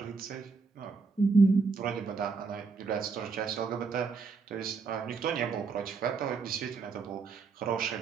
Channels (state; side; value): quieter; left; 4.7 dB